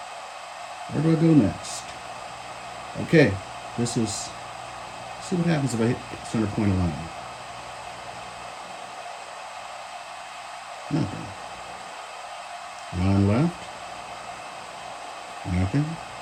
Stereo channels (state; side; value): identical; both; correlation 1.00